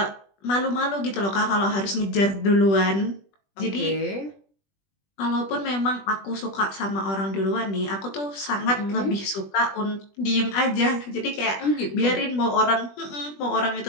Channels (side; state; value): right; late; 20 ms